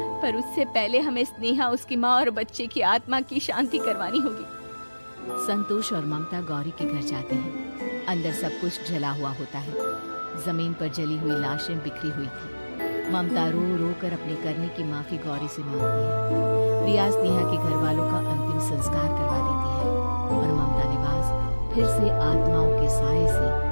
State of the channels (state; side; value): inverted; both; correlation -1.00